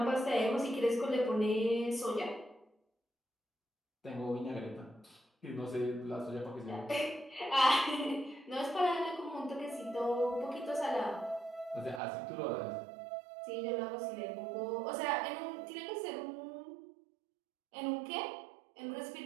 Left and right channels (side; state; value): left; drops out; at 12.0 s